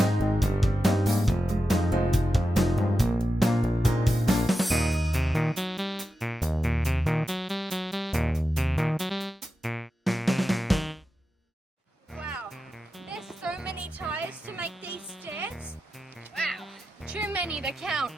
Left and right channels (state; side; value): normal; both; correlation 0.91